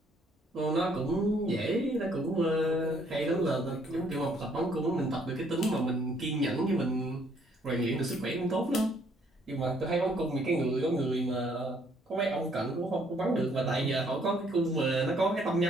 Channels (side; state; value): both; normal; correlation 0.65